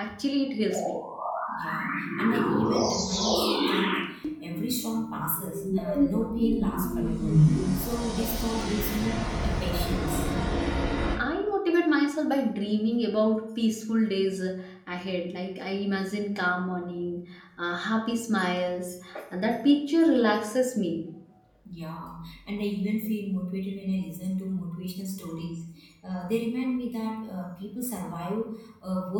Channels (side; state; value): both; identical; correlation 1.00